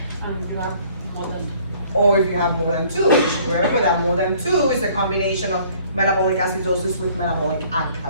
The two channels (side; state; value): both; inverted; correlation -0.57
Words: Or if you have more than 2, which remember that more than 2 is a combination of metabolic acidosis with metabolic